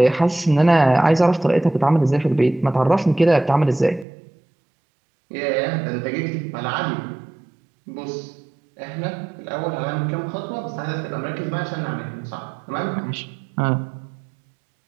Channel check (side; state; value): left; drops out; at 4.0 s